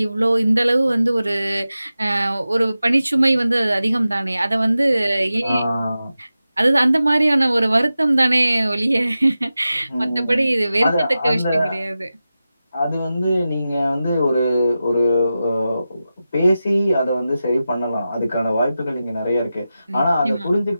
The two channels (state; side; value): inverted; both; correlation -0.93